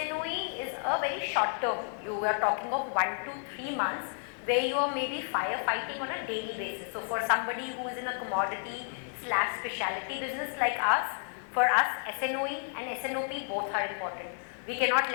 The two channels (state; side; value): silent; right; 57 dB below the other